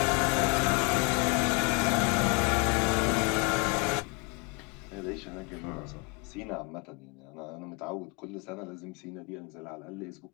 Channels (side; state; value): right; quieter; 31.4 dB